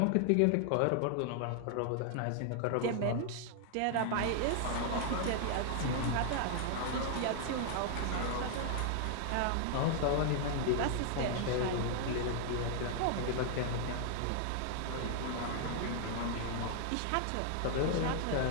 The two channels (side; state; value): both; different; correlation 0.00